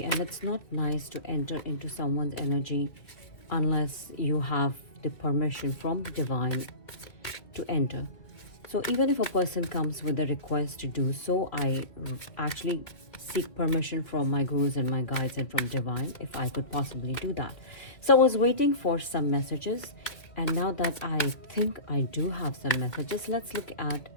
and it's not nice to enter into someone's energy unless you have the permission from the divine to enter. So even if a person comes with a request to do so, I actually seek permission from my gurus and my guides and from divine if I could possibly do that. So I was waiting for some messages, and now that I think I do have some messages, let's look at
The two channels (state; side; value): late; right; 2.3 ms